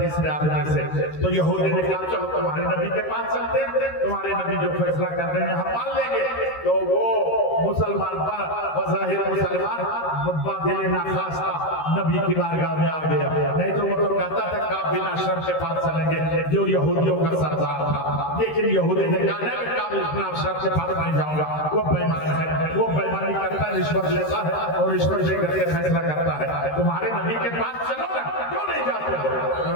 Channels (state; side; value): late; right; 13 ms